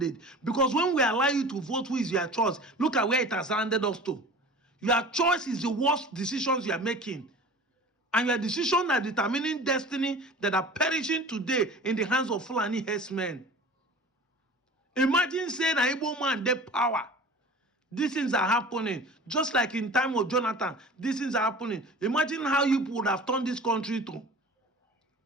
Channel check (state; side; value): normal; both; correlation 0.39